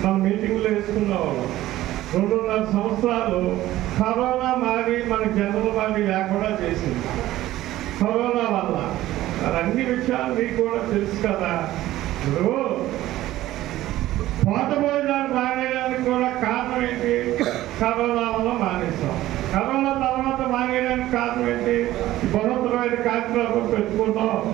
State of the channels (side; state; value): left; quieter; 15.2 dB